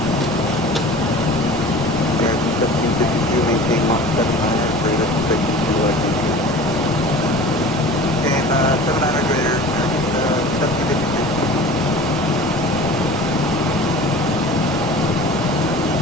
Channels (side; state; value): both; normal; correlation 0.40